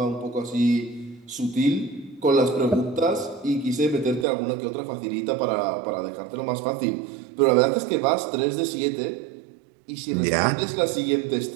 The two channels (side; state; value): left; drops out; at 4.2 s